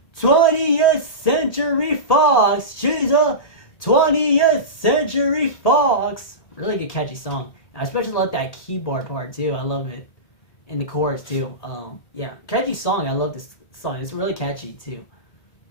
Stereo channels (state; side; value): late; right; 1.8 ms